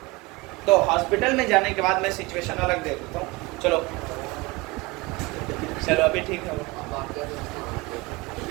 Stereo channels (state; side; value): quieter; left; 23.9 dB